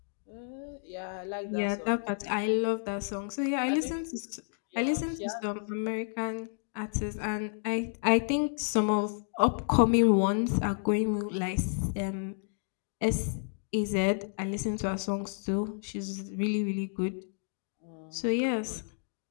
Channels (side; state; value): right; silent; digital silence